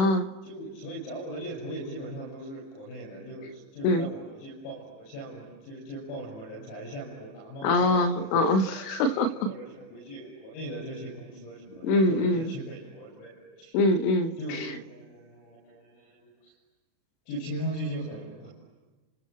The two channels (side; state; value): right; late; 37 ms